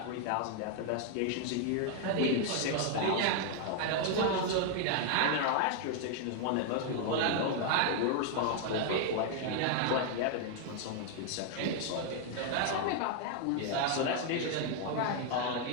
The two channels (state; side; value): different; both; correlation 0.00